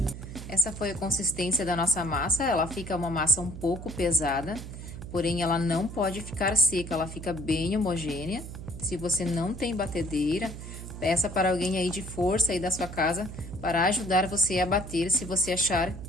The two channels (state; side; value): noise; right; hum, 10 dB below the sound